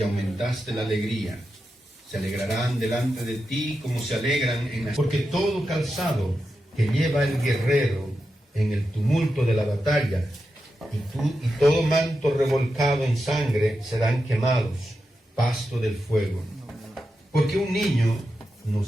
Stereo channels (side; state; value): both; normal; correlation 0.89